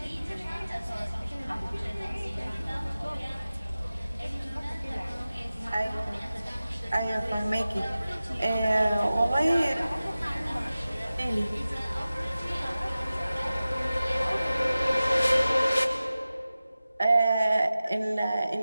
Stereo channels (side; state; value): both; inverted; correlation -0.96